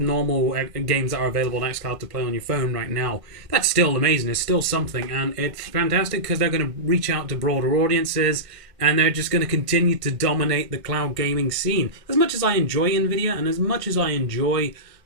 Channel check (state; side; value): late; left; 1.5 ms